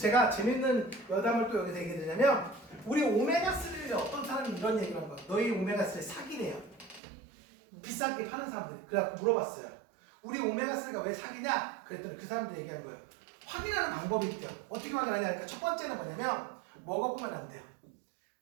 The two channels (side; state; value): left; drops out; at 7.0 s